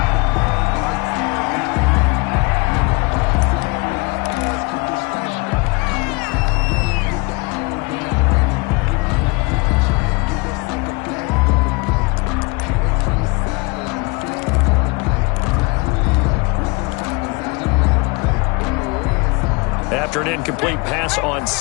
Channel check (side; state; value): right; quieter; 27.1 dB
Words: After an incomplete pass on